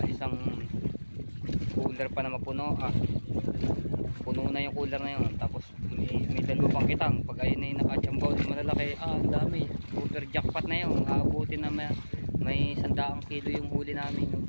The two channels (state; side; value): inverted; both; correlation -1.00